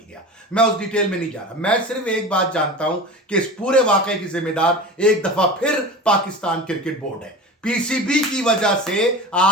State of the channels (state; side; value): normal; both; correlation 0.32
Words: मैं उस डिटेल में नहीं जा रहा। मैं सिर्फ एक बात जानता हूं कि इस पूरे वाकये की जिम्मेदार एक दफा फिर पाकिस्तान क्रिकेट बोर्ड है। पीसीबी की वजह से